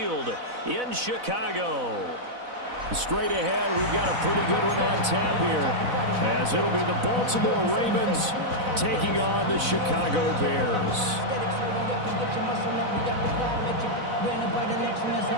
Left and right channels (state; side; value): late; left; 4.0 ms